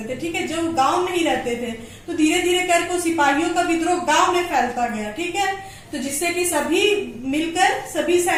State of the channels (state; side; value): identical; both; correlation 1.00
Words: थे। ठीक है, जो गांव में ही रहते थे, तो धीरे धीरे करके सिपाहियों का विद्रोह गांव में फैलता गया। ठीक है, तो जिससे कि सभी